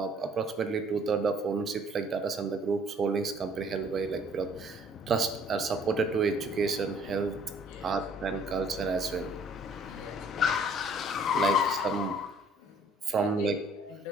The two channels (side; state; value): both; normal; correlation 0.58